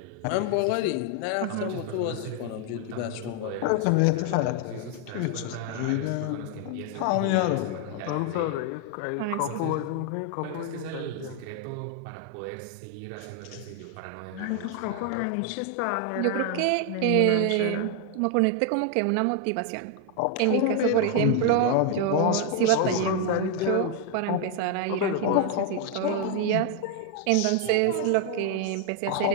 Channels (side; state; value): both; different; correlation 0.00